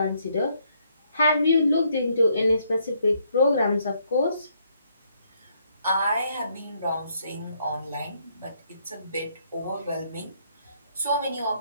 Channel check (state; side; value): inverted; both; correlation -0.71